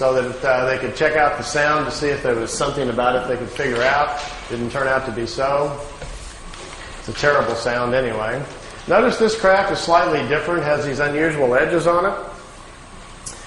that they could check out the sound to see if there was something about it they could figure out. Didn't turn out to be so. It's a terrible sound anyway. Notice this craft is slightly different, has these unusual edges on it.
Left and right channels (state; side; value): identical; both; correlation 1.00